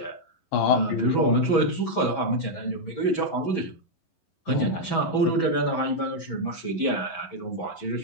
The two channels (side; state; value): right; late; 11 ms